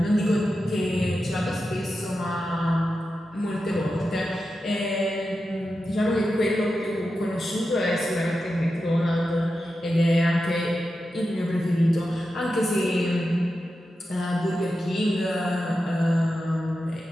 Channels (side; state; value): both; normal; correlation 0.90